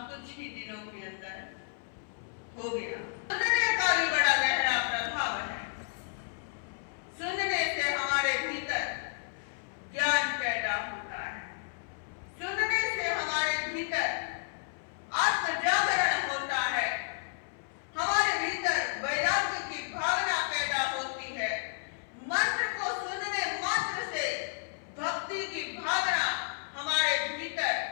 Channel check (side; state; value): right; silent; 57 dB below the other